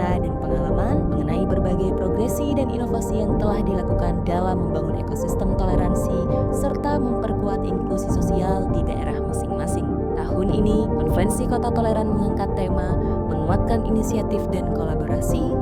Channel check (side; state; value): both; identical; correlation 1.00